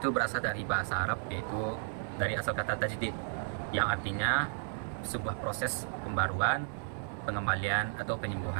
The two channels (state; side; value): silent; left; 55 dB below the other